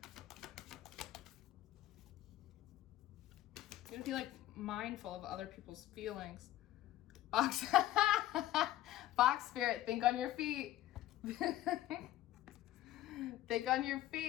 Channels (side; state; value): right; quieter; 14.3 dB